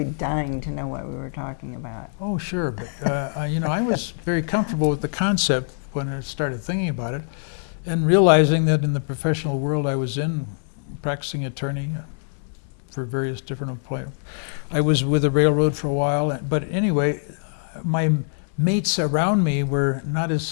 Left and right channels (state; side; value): silent; right; digital silence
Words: dying to know what we were talking about. Oh, sure, but I was very comfortable with the concept when I started thinking about it, and realizing that in the professional world I was in, practicing attorney for various different employers. I was with the railroad for a while, but anyway, my mates around me were not